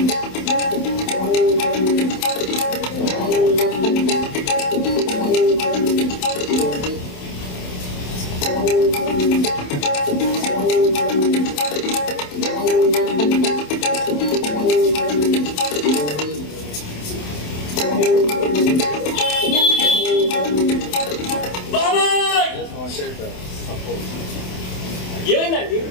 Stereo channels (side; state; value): right; late; 27 ms